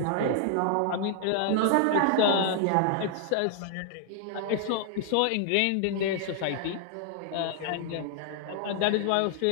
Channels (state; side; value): different; both; correlation 0.00